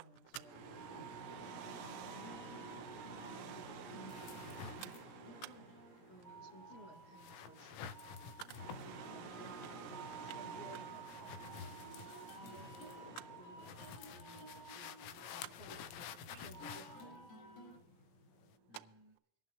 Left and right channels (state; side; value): late; right; 17 ms